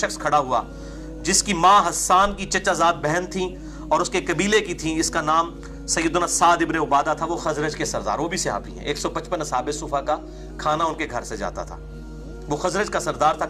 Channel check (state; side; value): identical; both; correlation 1.00